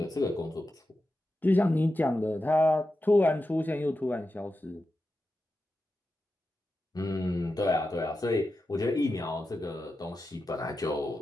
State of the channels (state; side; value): normal; both; correlation 0.91